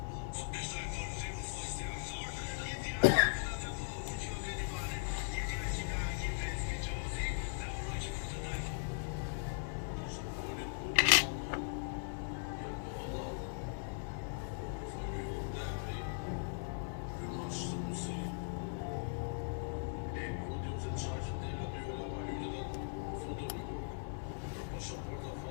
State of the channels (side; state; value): right; silent; digital silence